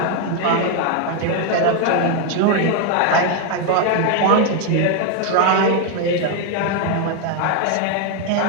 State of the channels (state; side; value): different; both; correlation 0.01